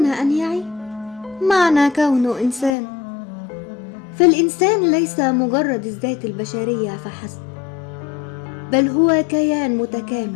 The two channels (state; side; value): drops out; right; at 2.8 s